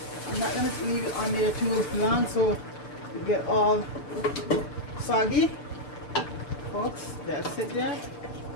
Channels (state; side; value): late; right; 6.8 ms